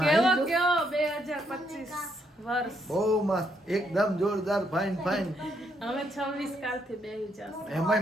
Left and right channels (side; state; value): both; normal; correlation 0.74